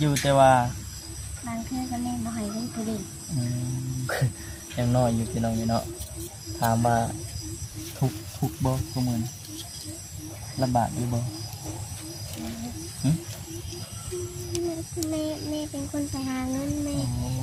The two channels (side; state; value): both; identical; correlation 1.00